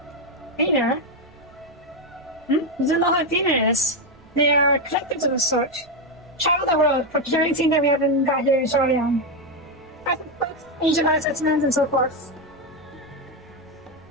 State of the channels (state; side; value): noise; right; rumble, 29 dB below the sound